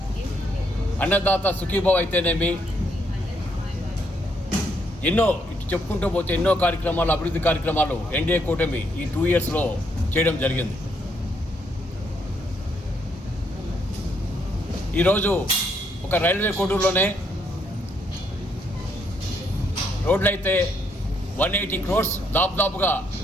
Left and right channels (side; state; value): both; normal; correlation 0.73